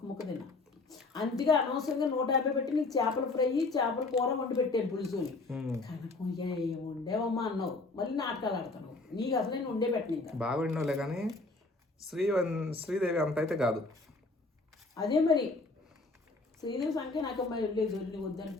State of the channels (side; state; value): right; quieter; 3.4 dB